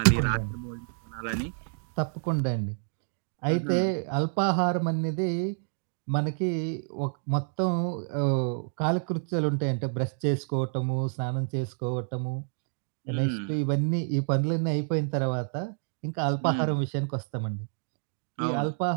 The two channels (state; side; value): silent; left; digital silence